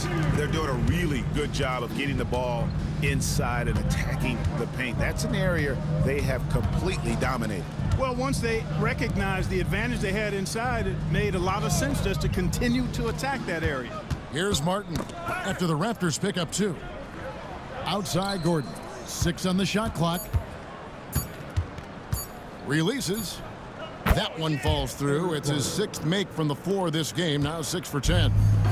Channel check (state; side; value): identical; both; correlation 1.00